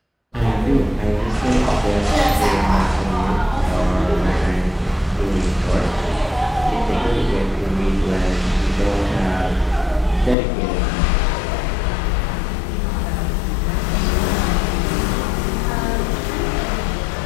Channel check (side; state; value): right; drops out; at 10.4 s